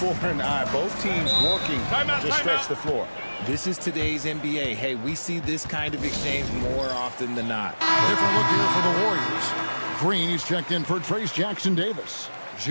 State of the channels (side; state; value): both; inverted; correlation -1.00